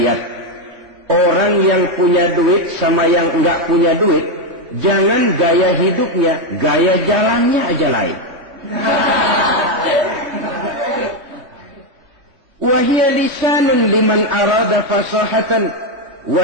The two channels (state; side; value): late; left; 3.5 ms